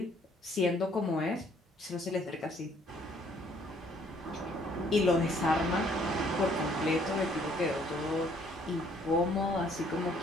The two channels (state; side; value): normal; both; correlation 0.63